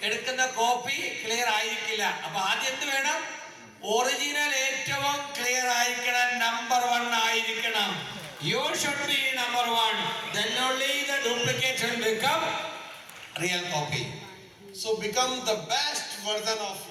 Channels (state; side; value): identical; both; correlation 1.00